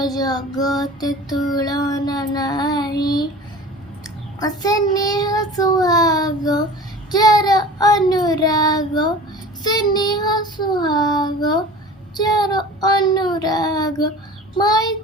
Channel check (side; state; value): both; normal; correlation 0.40